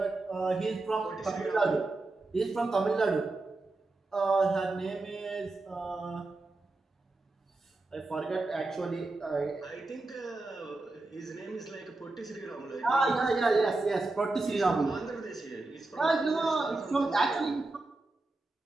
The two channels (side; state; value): left; quieter; 3.1 dB